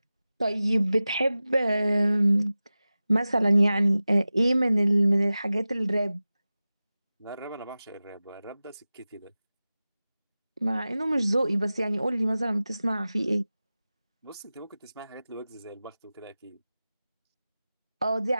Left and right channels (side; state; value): both; inverted; correlation -0.96